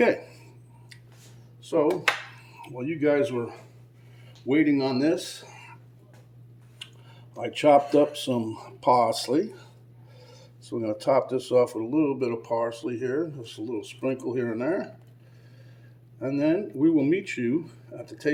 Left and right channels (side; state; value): both; identical; correlation 1.00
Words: So, while you guys were waiting on this, I chopped up some parsley. So we're going to top this off with a little bit of parsley here, just a little sprinkle here and there. And then we will meet you at the